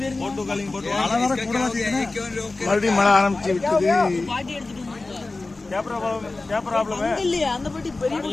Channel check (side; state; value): right; quieter; 3.4 dB